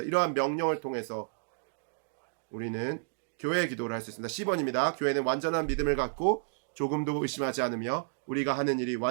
이러한 명령을 통해서 우리는 교회의 기도를 할 수 있습니다. 10번입니다. 교회는 완전한 믿음을 갖고 조금도 의심하지 않으며 우리가 하는 일이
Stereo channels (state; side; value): silent; left; digital silence